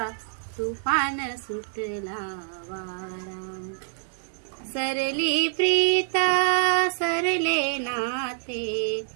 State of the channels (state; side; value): silent; left; digital silence